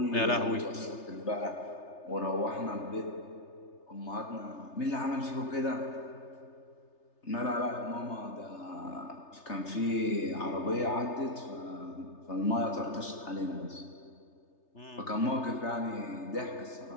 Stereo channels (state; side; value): late; right; 3.3 ms